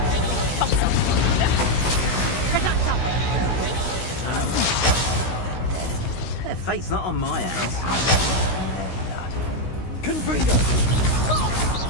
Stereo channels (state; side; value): late; right; 16 ms